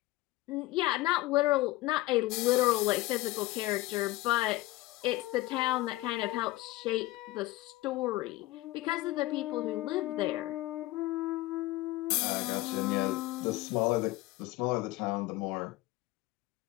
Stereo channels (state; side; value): quieter; right; 18.6 dB